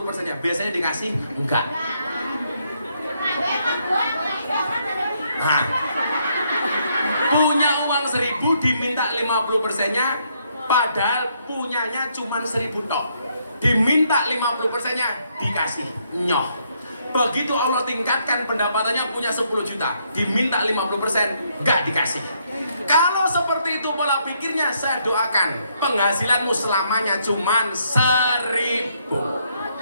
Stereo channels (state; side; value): inverted; both; correlation -0.73